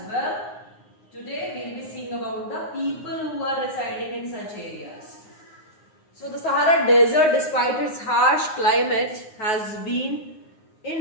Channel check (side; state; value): right; late; 9.6 ms